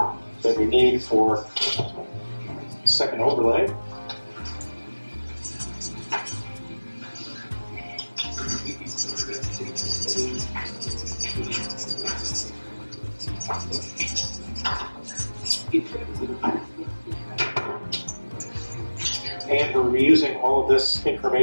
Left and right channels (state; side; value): inverted; both; correlation -1.00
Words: that we need for second overlay. And we're reusing all of this